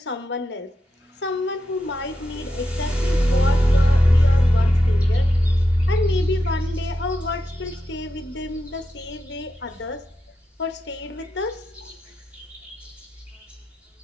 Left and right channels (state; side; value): normal; both; correlation 0.87